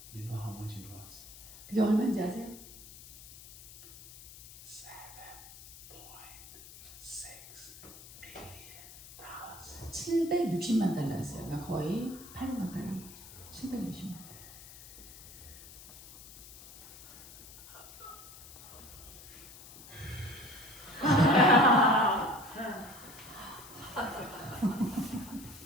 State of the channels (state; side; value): noise; left; hiss, 17 dB below the sound